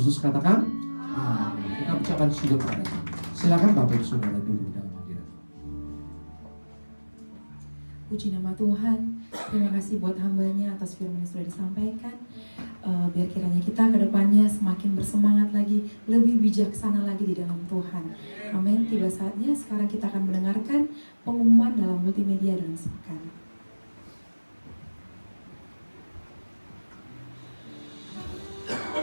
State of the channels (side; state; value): both; inverted; correlation -1.00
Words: katakan amin. Kita ucapkan syukur pada Tuhan. Silakan Bapak Ibu Saudara duduk dalam hadirat. Puji nama Tuhan. Terima kasih buat hambanya atas firman yang sudah disampaikan. Biar kiranya kita ke depannya semakin bersemangat lagi, lebih bijaksana lagi di dalam Tuhan. Amin. Tiba saatnya sekarang kita akan mendengarkan pengumuman dalam multimedia dan sepekan.